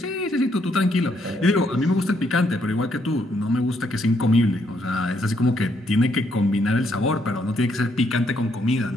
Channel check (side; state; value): both; normal; correlation 0.73